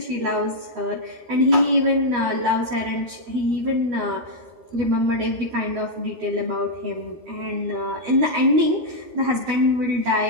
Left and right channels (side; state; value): left; late; 12 ms